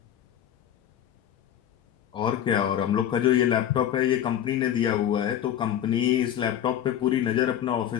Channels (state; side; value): quieter; right; 10.7 dB